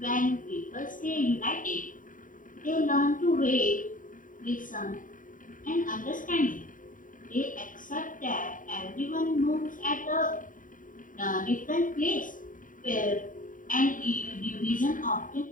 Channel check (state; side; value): late; right; 0.39 ms